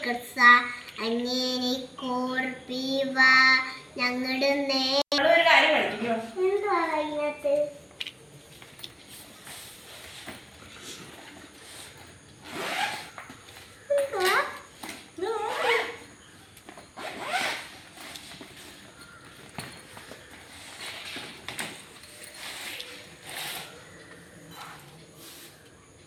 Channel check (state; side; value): identical; both; correlation 1.00